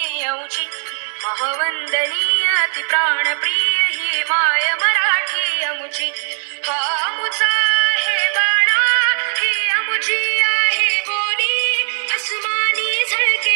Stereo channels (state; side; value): silent; left; 67 dB below the other